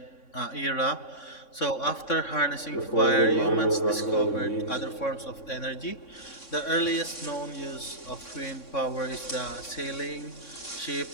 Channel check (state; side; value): late; right; 3.6 ms